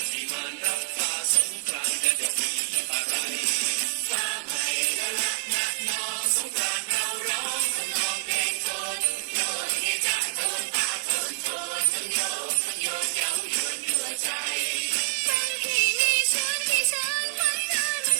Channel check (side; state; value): left; silent; digital silence